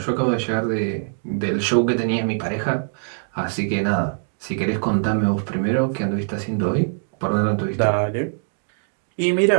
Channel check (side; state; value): left; silent; digital silence